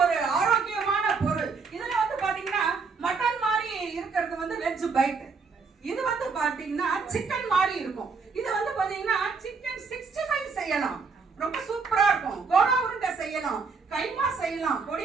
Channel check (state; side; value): quieter; left; 4.9 dB